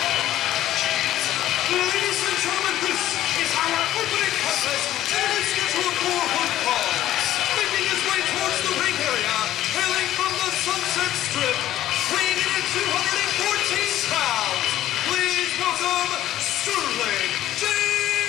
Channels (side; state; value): right; quieter; 13.3 dB